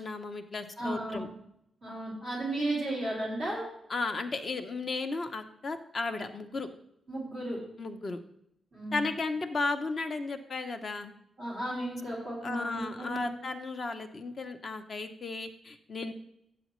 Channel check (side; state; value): both; normal; correlation 0.86